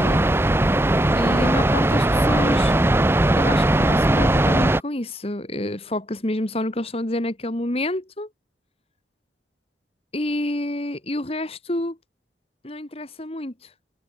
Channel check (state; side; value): normal; both; correlation 0.78